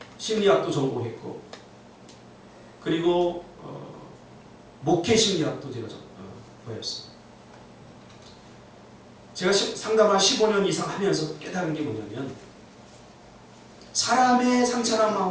심리학도 전공했고 그리고 목회 심리학도 제가 배웠습니다. 제가 상담을 15년 이상 하면서 깨달은 게 뭐냐면 사람의 상처난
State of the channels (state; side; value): identical; both; correlation 1.00